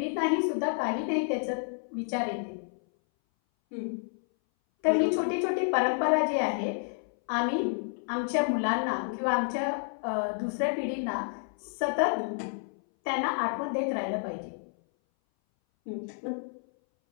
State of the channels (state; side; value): silent; right; 58 dB below the other